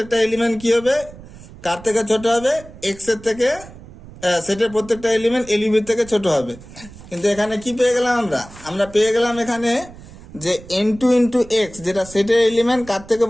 এলিমেন্ট কি হবে কার থেকে ছোট হবে, এক্স এর থেকে, সেটের প্রত্যেকটা এলিমেন্ট এলইউবির থেকে ছোট হবে। কিন্তু এখানে কি পেয়ে গেলাম আমরা পেয়ে গেলাম এখানে যে n2 ইন্টু এক্স যেটা সেটের এলিমেন্ট কার থেকে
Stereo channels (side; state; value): right; noise; rumble, 18 dB below the sound